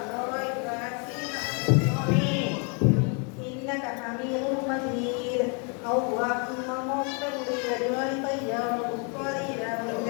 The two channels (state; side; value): quieter; right; 36.9 dB